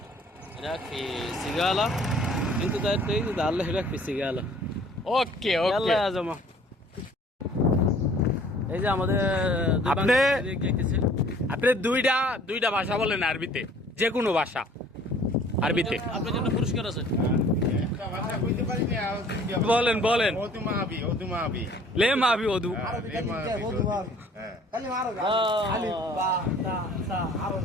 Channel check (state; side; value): normal; both; correlation 0.54